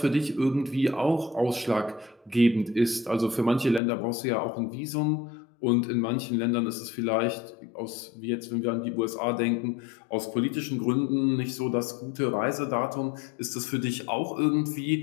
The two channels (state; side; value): drops out; right; at 3.8 s